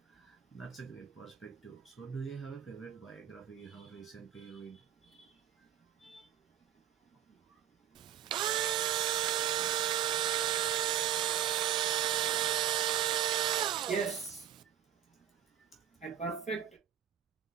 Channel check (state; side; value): quieter; left; 10.7 dB